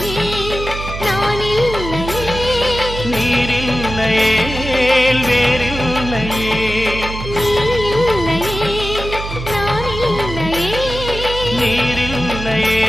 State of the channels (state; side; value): noise; right; hum, 8 dB below the sound